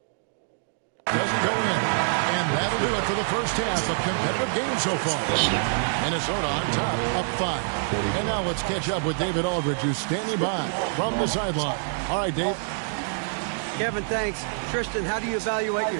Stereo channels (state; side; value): silent; left; digital silence